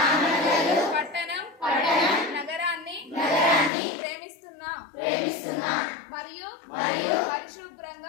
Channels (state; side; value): drops out; right; at 3.7 s